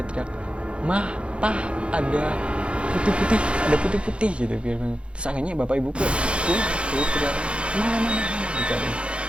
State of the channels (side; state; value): left; late; 0.059 ms